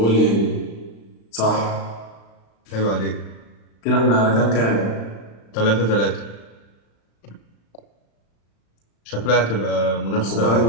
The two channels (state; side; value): late; right; 35 ms